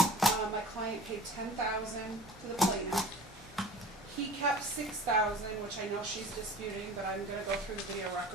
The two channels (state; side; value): normal; both; correlation 0.43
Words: my client paid $10,000 to the plaintiff. He kept $6,000, which I know she's disputing, but I'm going to go through the video